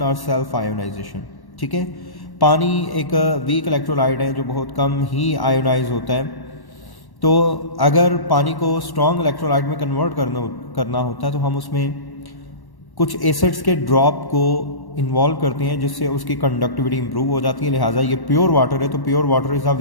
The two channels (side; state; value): right; late; 1.1 ms